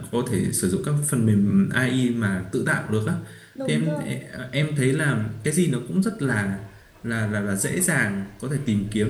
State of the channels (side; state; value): both; identical; correlation 1.00